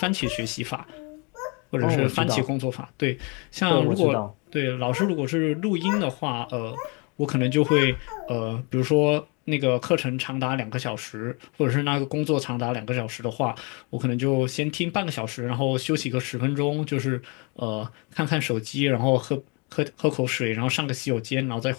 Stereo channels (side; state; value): right; quieter; 31.8 dB